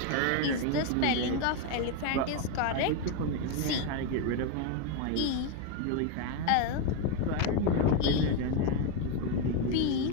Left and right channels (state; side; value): different; both; correlation 0.02